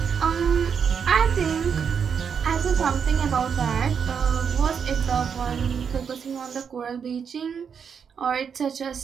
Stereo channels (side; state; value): left; quieter; 6.9 dB